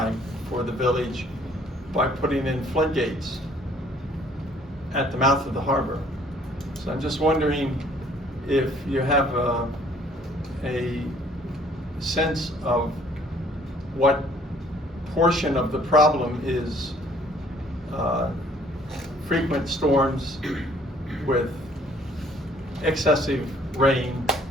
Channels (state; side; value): normal; both; correlation 0.59